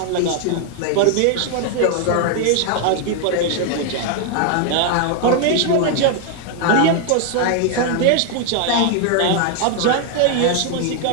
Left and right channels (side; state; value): both; different; correlation 0.00